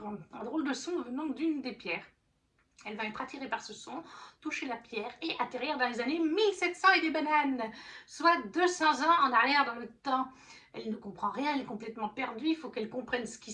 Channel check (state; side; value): identical; both; correlation 1.00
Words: un drôle de son venant d'une des pierres. Elle va être attirée par ce son, toucher la pierre et atterrir dans les années 1700 et des bananes, soit 200 ans en arrière dans le temps. Elle ne comprend rien, elle est complètement perdue, il faut qu'elle comprenne ce qui